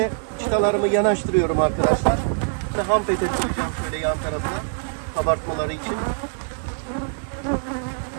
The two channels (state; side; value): silent; left; digital silence